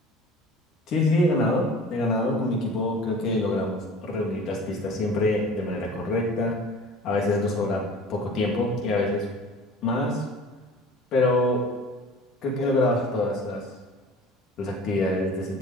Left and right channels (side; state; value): both; normal; correlation 0.43